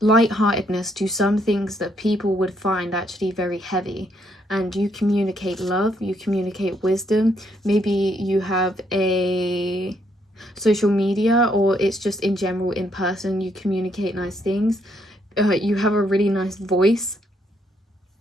lightheartedness to some things that people would find actually very heavy, and you communicate love, you communicate wisdom. Maybe you have a social media, or it's just in general in person, you communicate nice things. You have a really nice voice.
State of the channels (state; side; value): normal; both; correlation 0.73